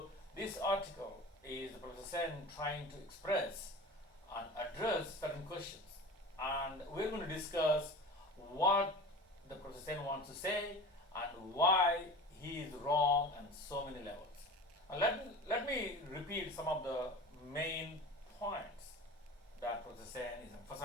this article is Professor Sen trying to express and address certain questions, and we're going to discuss what the Professor Sen wants to say and why he is wrong on so many levels. And let me repeat some of the main points that Professor Sen is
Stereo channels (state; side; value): normal; both; correlation 0.35